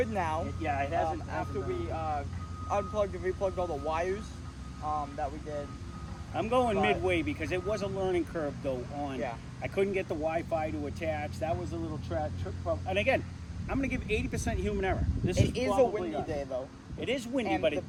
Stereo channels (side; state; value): both; identical; correlation 1.00